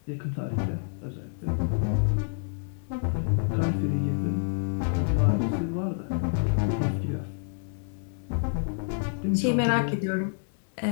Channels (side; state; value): right; silent; digital silence